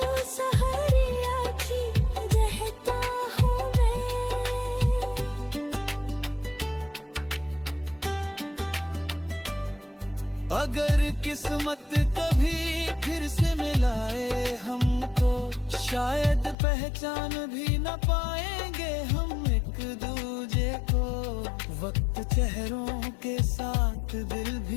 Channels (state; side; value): drops out; right; at 16.6 s